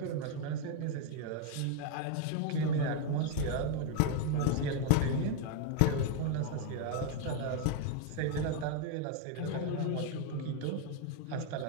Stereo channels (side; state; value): both; different; correlation 0.01